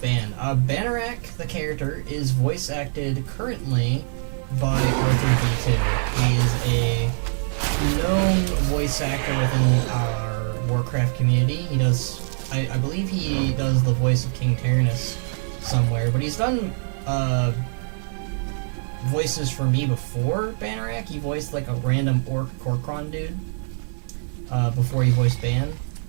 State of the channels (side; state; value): left; silent; 63 dB below the other